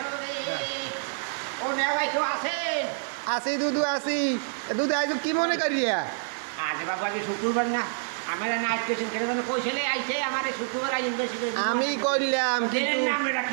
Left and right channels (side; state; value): left; silent; digital silence